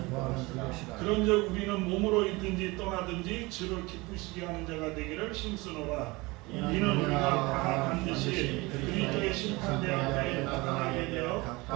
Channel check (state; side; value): quieter; left; 23.5 dB